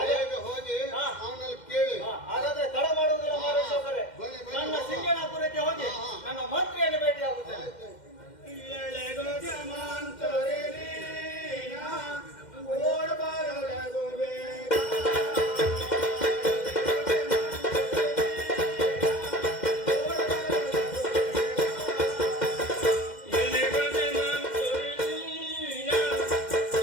ಬೇಗ ಹೋಗಿ ಅವನಲ್ಲಿ ಕೇಳಿ. ಹಾಗಾದ್ರೆ ತಡ ಮಾಡುವುದಿಲ್ಲ ಮಾರೇಶ್ವರರೇ. ನನ್ನ ಸಿಂಗನಾಪುರಕ್ಕೆ ಹೋಗಿ ನನ್ನ ಮಂತ್ರಿಯನ್ನು ಭೇಟಿ ಆಗುತ್ತೇನೆ.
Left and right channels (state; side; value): late; right; 2.1 ms